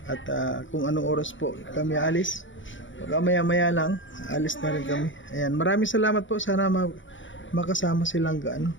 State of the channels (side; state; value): right; late; 0.56 ms